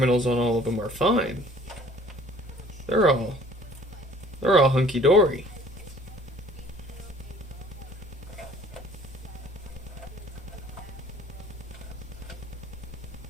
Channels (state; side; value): normal; both; correlation 0.53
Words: on all of them are fine. They're all hunky dory.